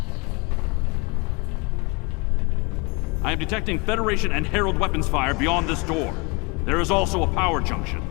I am detecting Federation and Herald weapons fire beyond this door. There is also a power junction.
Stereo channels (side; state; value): right; quieter; 28.5 dB